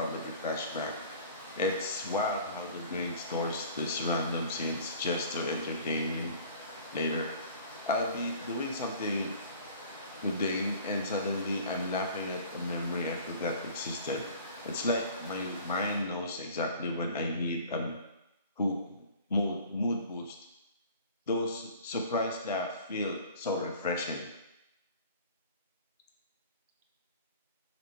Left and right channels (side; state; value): both; inverted; correlation -0.46